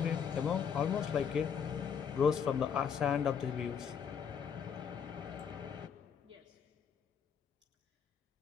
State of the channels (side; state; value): right; quieter; 7.3 dB